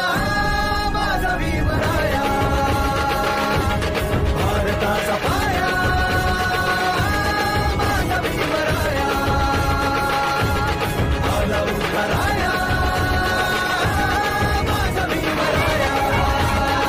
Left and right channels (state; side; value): identical; both; correlation 1.00